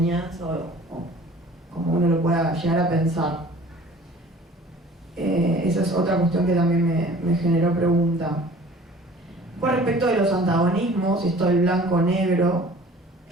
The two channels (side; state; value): both; normal; correlation 0.48